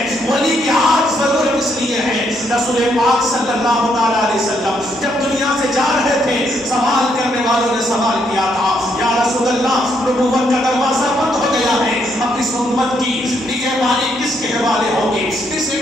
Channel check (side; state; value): both; normal; correlation 0.74